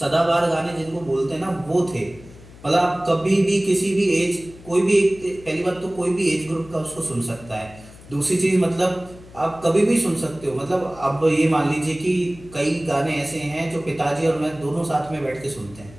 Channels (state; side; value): noise; left; hum, 20 dB below the sound